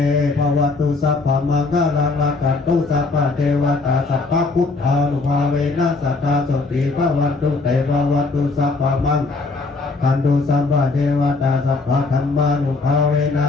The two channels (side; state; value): right; quieter; 3.7 dB